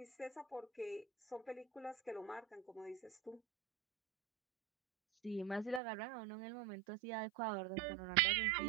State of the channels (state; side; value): drops out; left; at 5.8 s